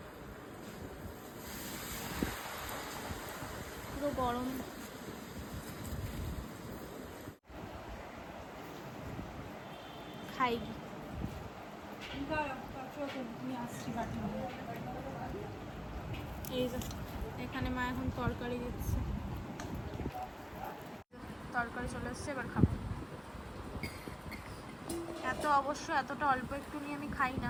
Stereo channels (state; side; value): identical; both; correlation 1.00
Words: পুরো গরম। খাই এই যে এখানে মা এখন তরকারি দিচ্ছে, তরকারি চলে এসছে, এবার খাবো। এতটা অল্প একটু নিয়ে আমি খাই